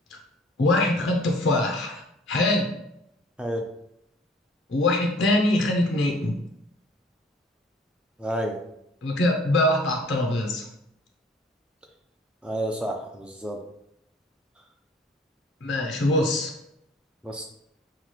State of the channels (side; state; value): both; normal; correlation 0.53